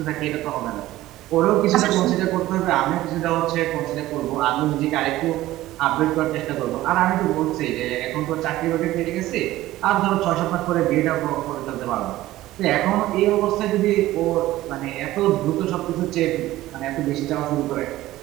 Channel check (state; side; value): quieter; left; 16.0 dB